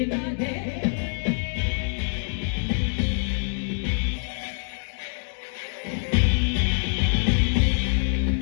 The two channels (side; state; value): right; silent; digital silence